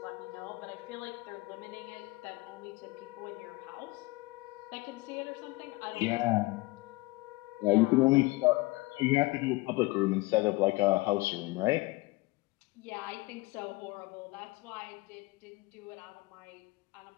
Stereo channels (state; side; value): quieter; right; 22.5 dB